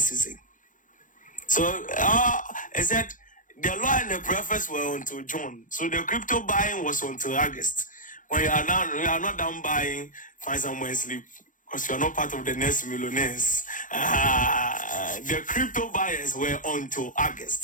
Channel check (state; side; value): late; right; 0.38 ms